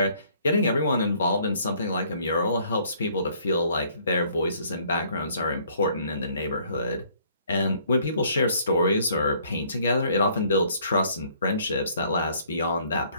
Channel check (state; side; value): inverted; both; correlation -0.62